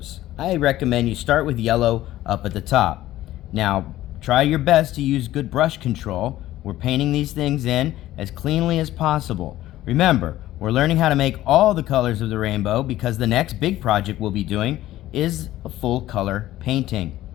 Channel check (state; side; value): quieter; right; 14.8 dB